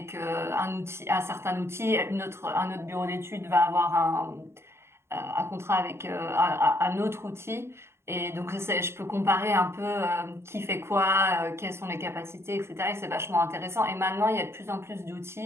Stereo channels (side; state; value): left; late; 0.12 ms